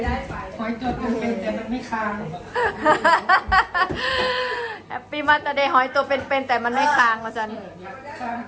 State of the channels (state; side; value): identical; both; correlation 1.00